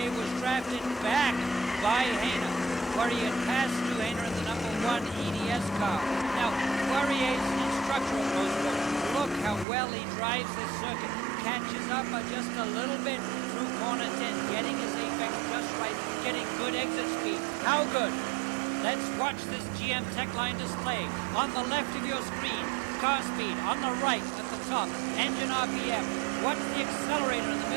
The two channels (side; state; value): left; drops out; at 9.7 s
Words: was drafted back by Hayner. Poirier passed to Hayner in the number 1 EDS car. Now, Poirier's instructor of Mosport. Look how well he drives this circuit. Catches up just a little bit through corner 10, getting his apex just right, getting good exit speed. How good? Let's watch this GM Tech Line display. On the left of your screen, car speed. On the right at the top, engine RPM. What's the accelerator in the